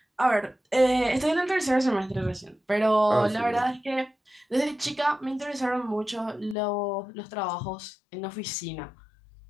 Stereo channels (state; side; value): drops out; right; at 6.6 s